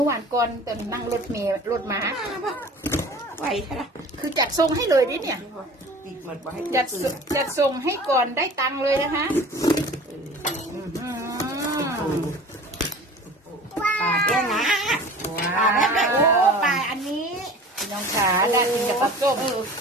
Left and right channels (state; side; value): normal; both; correlation 0.42